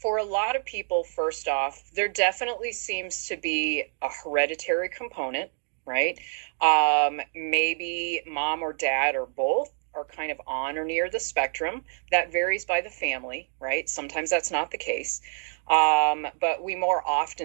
a lot of people, first off, there definitely seems to be a hereditary component. Right. Maybe mom or dad or both are kind of on or near the spectrum. That varies by the family, right? Sometimes that's not the case. But we more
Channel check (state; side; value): silent; left; digital silence